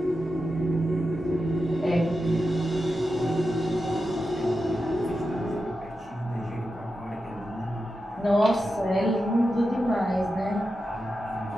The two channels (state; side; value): normal; both; correlation 0.90